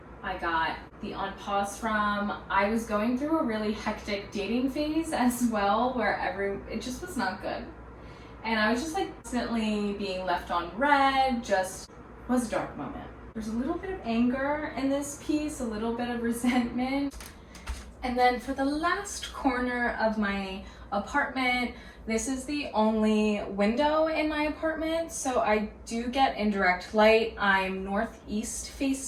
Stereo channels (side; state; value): both; identical; correlation 1.00